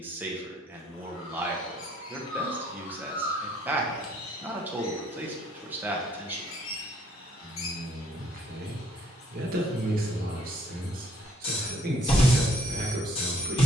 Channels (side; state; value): both; normal; correlation 0.63